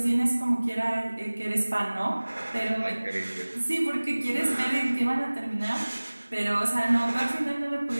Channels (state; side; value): inverted; both; correlation -1.00